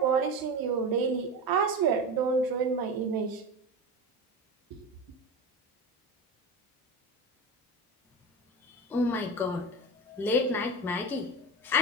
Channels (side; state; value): both; normal; correlation 0.25